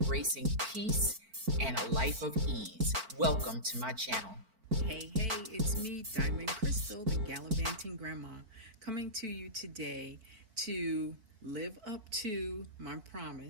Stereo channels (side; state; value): left; late; 4.5 ms